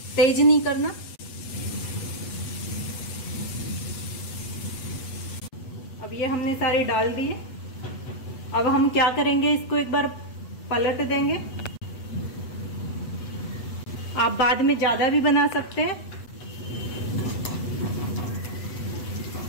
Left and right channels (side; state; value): right; late; 8.1 ms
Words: तेज नहीं करना। अब ये हमने सारे डाल दिए। अब हम क्या करेंगे, इसको एक बार पलट देंगे। आप बाद में ज्यादा भी बना सकते हैं।